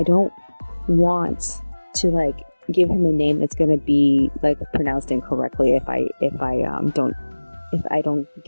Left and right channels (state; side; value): inverted; both; correlation -1.00